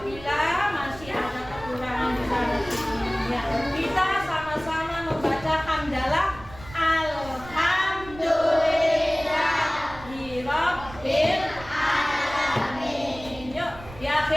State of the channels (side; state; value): right; noise; rumble, 17 dB below the sound